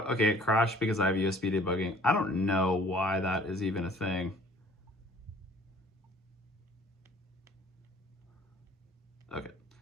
Okay. It crashed because I have USB debugging. I don't know why that is even a thing. Okay.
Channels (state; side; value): normal; both; correlation 0.53